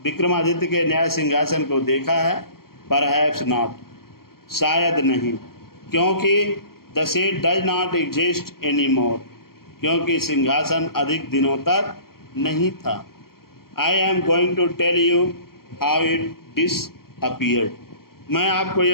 विक्रमादित्य के न्याय सिंहासन को देखा है? Perhaps not, शायद नहीं, क्योंकि the seat does not exist anymore, क्योंकि सिंहासन अधिक दिनों तक नहीं था। I am going to tell you how it disappeared, मैं आपको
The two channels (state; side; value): late; right; 0.93 ms